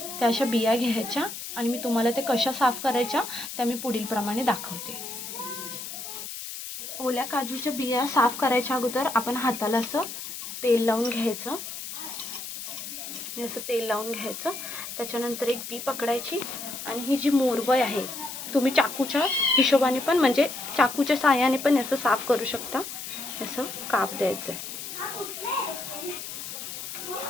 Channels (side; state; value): left; noise; hiss, 8 dB below the sound